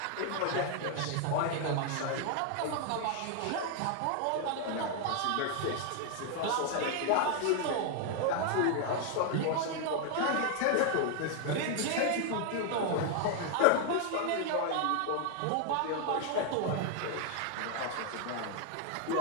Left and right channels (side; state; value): both; different; correlation 0.00